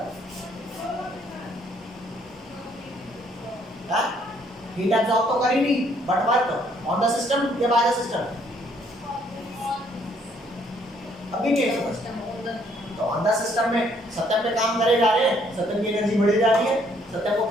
हीट एब्जॉर्ब तो करी नहीं, but work on the system या बाय द सिस्टम, अभी नहीं समझ। तो ऑन द सिस्टम में सत्यम पे काम करे जा रहे हैं, सत्यम की एनर्जी बढ़ी जा रही है, सत्यम को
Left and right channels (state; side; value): normal; both; correlation 0.66